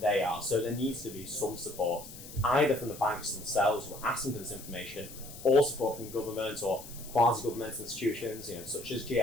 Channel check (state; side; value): noise; left; hiss, 15 dB below the sound